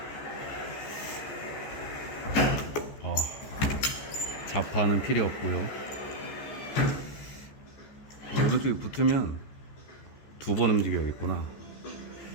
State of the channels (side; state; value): right; late; 14 ms